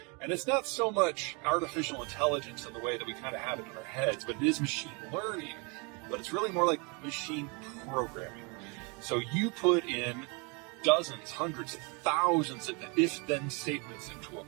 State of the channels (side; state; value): left; quieter; 31.5 dB